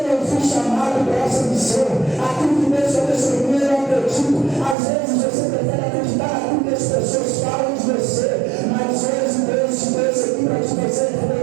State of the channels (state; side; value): drops out; left; at 4.8 s